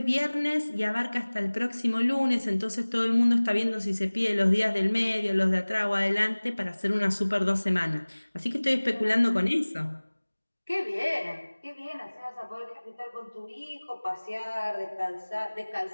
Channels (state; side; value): inverted; both; correlation -1.00